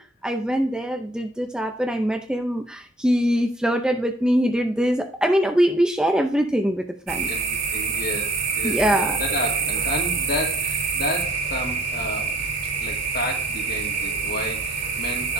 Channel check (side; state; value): both; normal; correlation 0.59